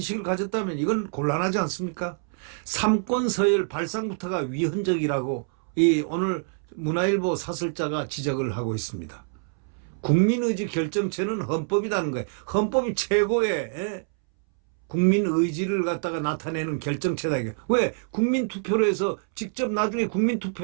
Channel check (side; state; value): left; silent; 61 dB below the other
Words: 가졌다면 이건 곤란하지 않습니까? 삼권 서열 발상부터가 위헌적이라고 오늘 문화일보 사설자가 지적을 하고 있습니다. 국민의지 결정체는 헌법이라는 거예요. 헌법이 최고의 국민의지를 갖다가 나타내는 결정체다. 이게. 왜? 국민투표로 해서 직접 나중에